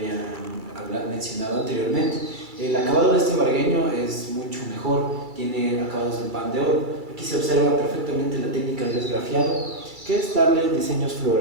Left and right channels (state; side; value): late; left; 2.3 ms